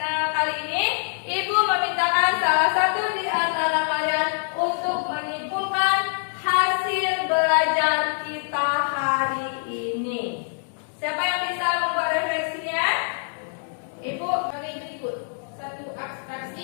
kali ini, Ibu memintakan salah satu di antara kalian untuk menyimpulkan hasil belajar kita hari ini. Siapa yang bisa membuat refleksinya? Ibu. Sebagai berikut. 1.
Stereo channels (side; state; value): right; silent; digital silence